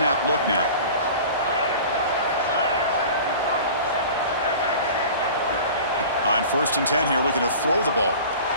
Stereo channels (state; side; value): inverted; both; correlation -0.40